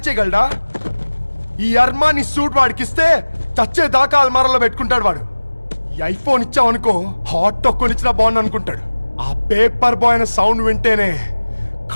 చేయగలడా? ఈ అర్మాని సూట్ వాడికి ఇస్తే చచ్చే దాకా అల్మారాలో పెట్టుకుంటాడు వాడు. ఈ ఐఫోన్ ఇచ్చావనుకో హాట్ టొక్కుని ఇచ్చినా బాగుంది అనుకుంటాడు. ఆ పేపర్ బాయ్ అనే సౌండ్ వింటేనే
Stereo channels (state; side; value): inverted; both; correlation -1.00